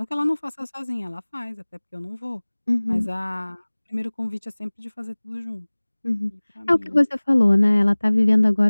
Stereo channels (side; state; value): both; inverted; correlation -1.00